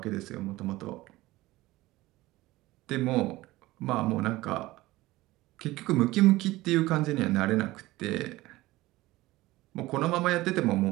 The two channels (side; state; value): left; quieter; 18.6 dB